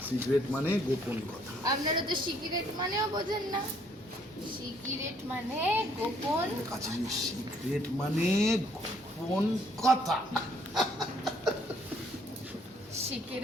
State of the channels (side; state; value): both; normal; correlation 0.65